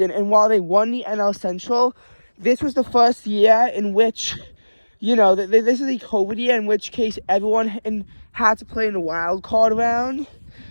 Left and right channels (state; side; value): inverted; both; correlation -1.00